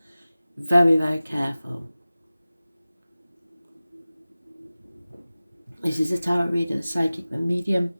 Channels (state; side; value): inverted; both; correlation -0.97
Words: Very, very careful. This is a tarot reader, the psychic, the medium,